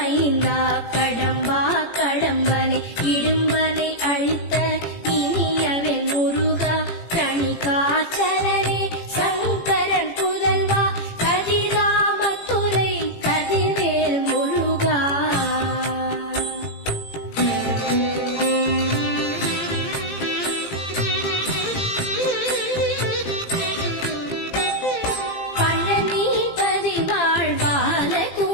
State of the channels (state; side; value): late; right; 18 ms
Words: மைந்தா கடம்பா கடம்பனை இடும்பனை அழித்த இனியவன் முருகா கணிகாச்சலனே சங்கரன் புதல்வா கதிராமத்துறை கதிர்வேல் முருகா. பழனிபதி வாழ்